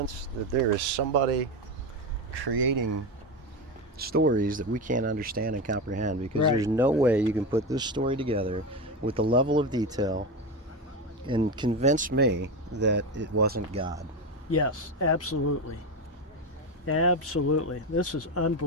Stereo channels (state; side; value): normal; both; correlation 0.17